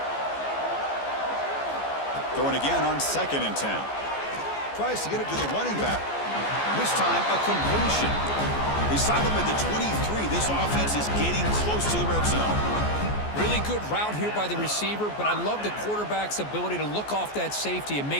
Throwing again on 2nd and 10. Tries to get it to the running back. This time, a completion. They stop him at the 23. This offense is getting close to the red zone. Really good route here by the receiver, but I love the quarterback's ability to look off that safety and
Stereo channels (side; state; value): right; late; 14 ms